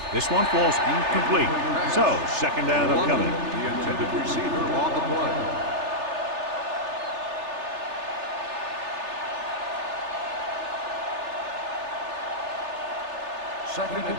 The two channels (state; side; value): late; left; 3.3 ms